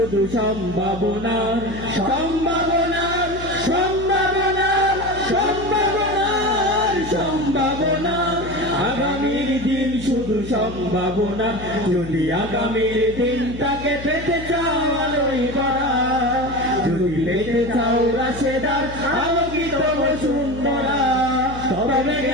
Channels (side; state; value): left; noise; hum, 12 dB below the sound